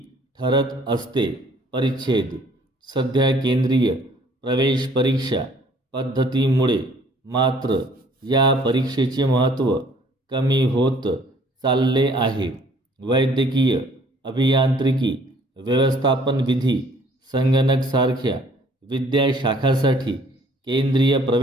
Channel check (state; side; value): normal; both; correlation 0.58